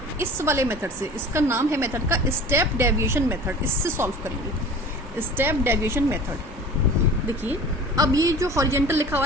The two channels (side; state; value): both; normal; correlation 0.41